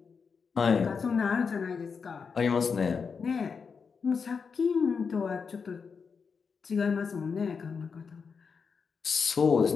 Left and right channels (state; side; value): quieter; right; 5.7 dB